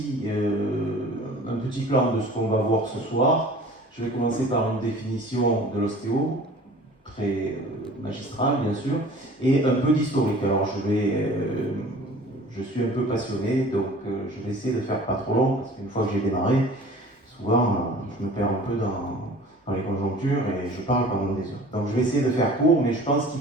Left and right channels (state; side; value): normal; both; correlation 0.45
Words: plan de ce qu'on va voir ce soir. Je vais commencer par une définition de l'ostéo, très magistrale bien sûr, et un peu d'historique. Alors je suis un peu passionné, donc je vais essayer de faire pas trop long, parce qu'une fois que j'ai démarré, souvent je me perds un peu dans les conjonctures et je parle pendant des heures. Donc je vais essayer de faire court, mais je pense